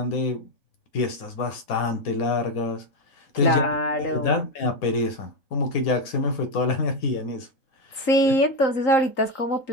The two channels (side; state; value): right; late; 3.8 ms